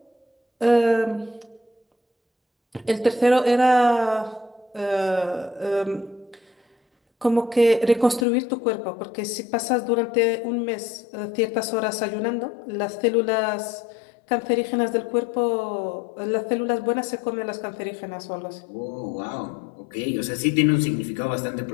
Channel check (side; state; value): right; drops out; at 8.2 s